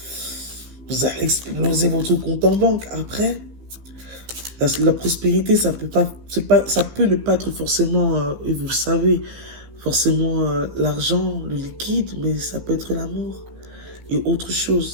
vous allez exploser votre compte en banque. Après, la prospérité, ça peut pas, ça peut ne pas être forcément, et vous le savez, forcément l'argent, le liquide, mais ça peut être l'amour et autre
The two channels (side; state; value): left; late; 15 ms